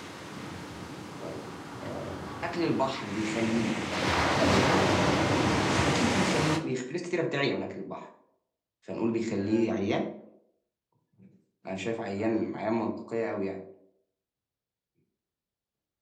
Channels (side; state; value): both; identical; correlation 1.00